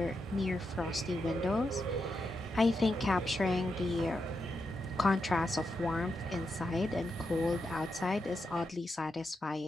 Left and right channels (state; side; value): normal; both; correlation 0.85